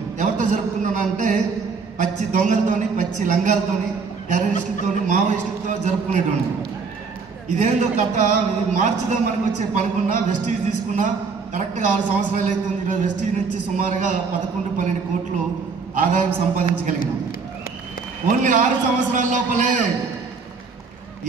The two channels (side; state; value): left; quieter; 4.9 dB